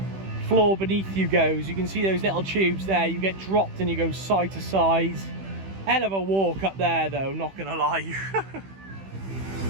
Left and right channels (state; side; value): late; left; 15 ms